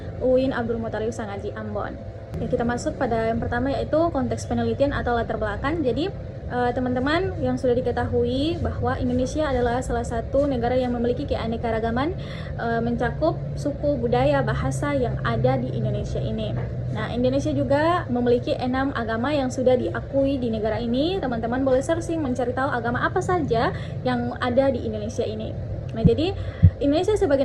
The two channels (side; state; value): both; identical; correlation 1.00